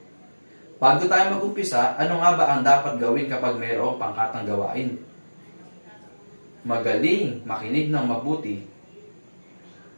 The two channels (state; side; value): inverted; both; correlation -1.00